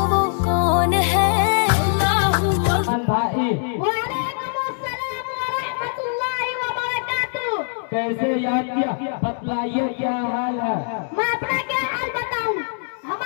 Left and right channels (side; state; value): right; silent; digital silence